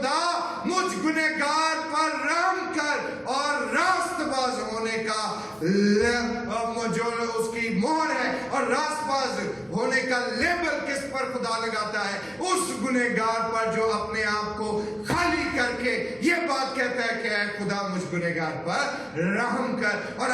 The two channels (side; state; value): both; identical; correlation 1.00